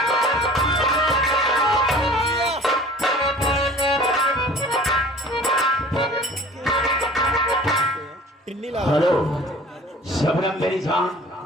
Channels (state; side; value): normal; both; correlation 0.45